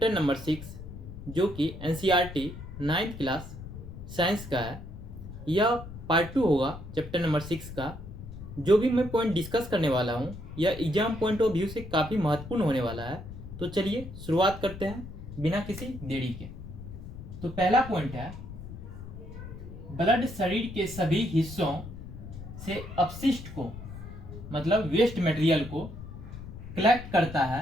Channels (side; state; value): left; noise; rumble, 12 dB below the sound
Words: नंबर 6, जो कि एनसीईआरटी 9th क्लास साइंस का है। यह पार्ट 2 होगा चैप्टर नंबर 6 का। जो भी मैं पॉइंट डिस्कस करने वाला हूँ यह एग्जाम पॉइंट ऑफ व्यू से काफ़ी महत्वपूर्ण होने वाला है। तो चलिए शुरुआत करते हैं बिना किसी देरी के। तो पहला पॉइंट है, ब्लड शरीर के सभी हिस्सों से अपशिष्ट को मतलब वेस्ट मटेरियल को कलेक्ट करता